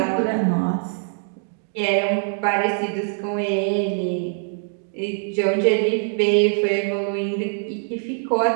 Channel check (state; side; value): silent; left; digital silence